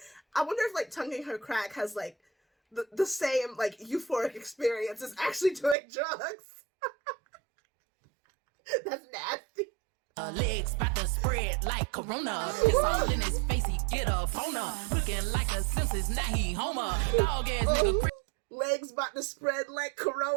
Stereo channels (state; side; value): drops out; left; at 5.8 s